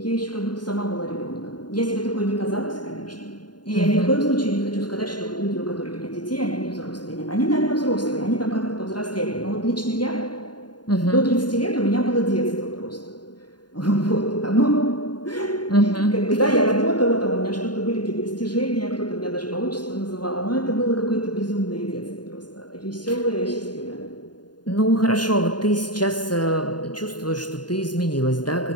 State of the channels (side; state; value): right; late; 0.70 ms